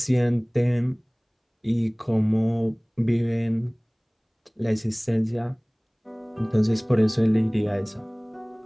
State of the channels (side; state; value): both; identical; correlation 1.00